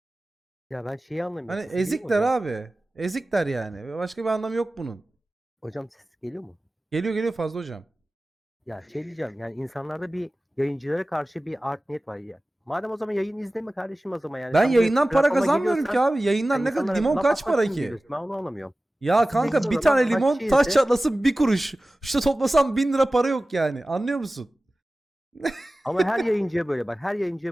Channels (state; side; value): normal; both; correlation 0.97